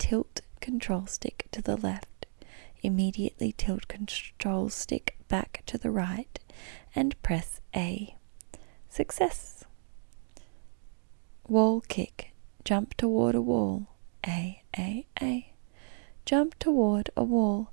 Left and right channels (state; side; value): silent; left; digital silence